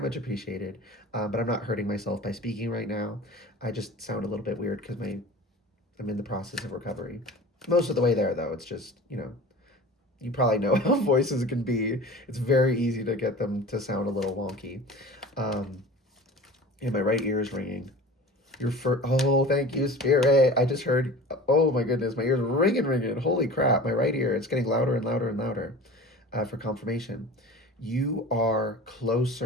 appreciated. But I'm not hurting myself by speaking right now. I just sound a little bit weird because I'm in the process of recovery. Most of the way there, though. It's just, you probably know how voices can be. It's very easy to get them to sound a little wonky. Um, and my right ear is ringing. Oh, thank you, Spirit. I just heard, oh my goodness, my ears ringing. Holy crap, my right ear, it's getting louder and louder and louder for confirmation. You are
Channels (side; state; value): both; normal; correlation 0.38